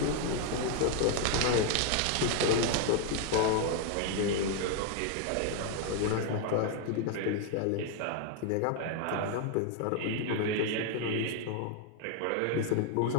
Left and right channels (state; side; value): different; both; correlation 0.00